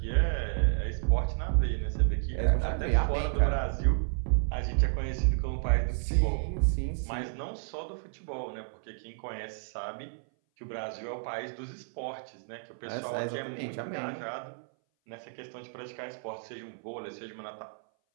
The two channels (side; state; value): left; silent; 57 dB below the other